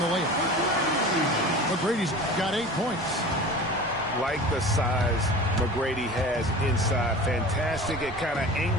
layup. McGrady's got 8 points. Like the size McGrady has inside. Fantastic at kind of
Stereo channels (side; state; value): both; normal; correlation 0.37